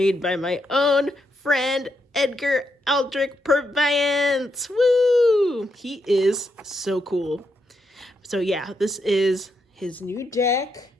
by my own friend Edgar Aldrich Purviance. Woo! He is so cool. So yeah, this is his new deck.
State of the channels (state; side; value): normal; both; correlation 0.81